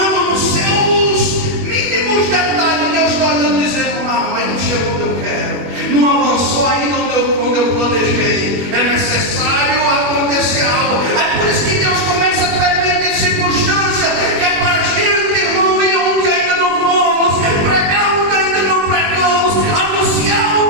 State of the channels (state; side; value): late; left; 21 ms